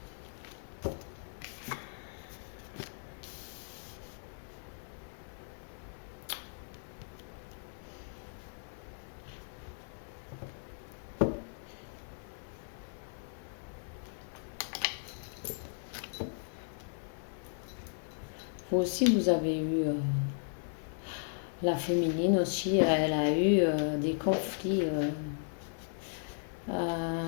vous aussi, vous avez eu la féminine aussi, elle a eu des conflits.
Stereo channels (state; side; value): silent; right; 54 dB below the other